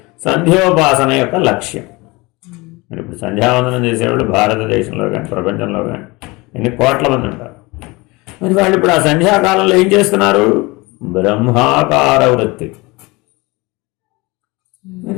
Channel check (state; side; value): quieter; right; 24.0 dB